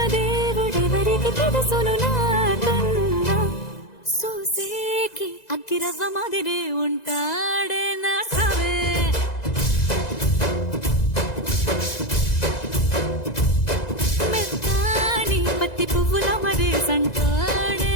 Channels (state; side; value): late; right; 2.0 ms